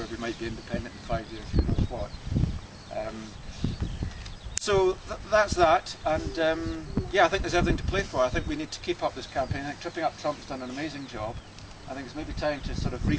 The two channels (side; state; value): both; identical; correlation 1.00